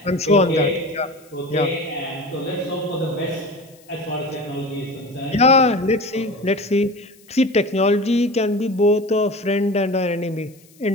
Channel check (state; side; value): noise; left; hiss, 28 dB below the sound